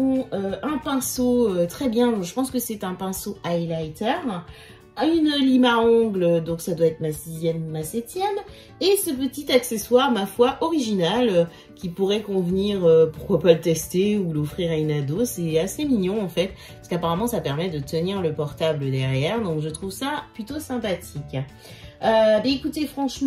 un pinceau très bien. Je pense que c'est un pinceau highlighter. Une lime à ongles, donc ça doit être ma 6e, ma 7e. Et ce petit accessoire, ma foi, original, qui pourrait convenir, pourquoi pas le tester ou l'offrir à une ado. C'est assez mignon en fait, parce qu'apparemment ça permet de tenir le portable derrière. Donc, je trouve ça plutôt sympathique. Bah écoutez,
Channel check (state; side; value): identical; both; correlation 1.00